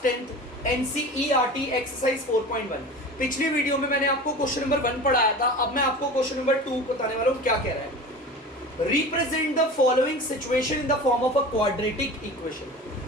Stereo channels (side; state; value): both; normal; correlation 0.35